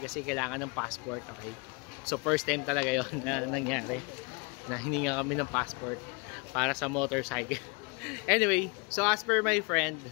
kasi kailangan ng passport, okay? So first time talaga yon na nangyari na hininga kami ng passport para sa motorcycle. Anyway, so as per my friend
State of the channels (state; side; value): quieter; right; 30.7 dB